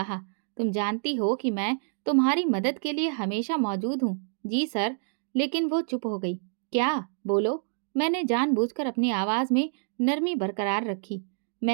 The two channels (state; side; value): silent; left; digital silence